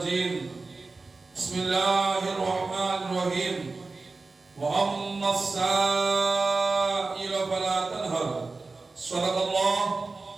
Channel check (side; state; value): left; quieter; 3.8 dB